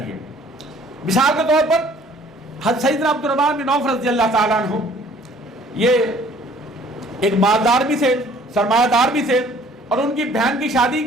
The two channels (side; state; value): both; normal; correlation 0.56